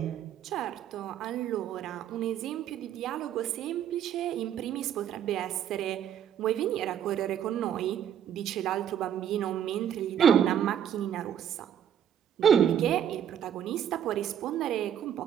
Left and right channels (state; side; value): quieter; left; 9.5 dB